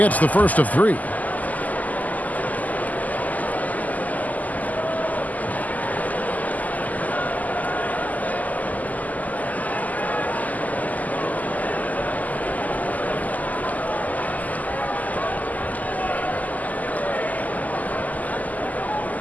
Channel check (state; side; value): late; right; 0.079 ms